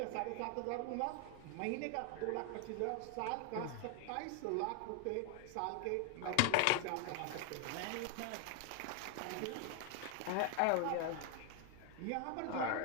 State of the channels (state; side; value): different; both; correlation 0.01